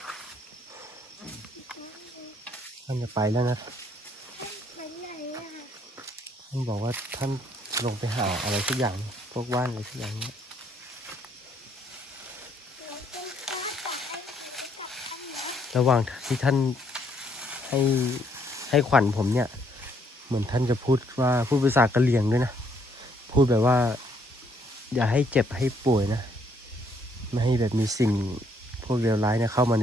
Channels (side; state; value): both; normal; correlation 0.69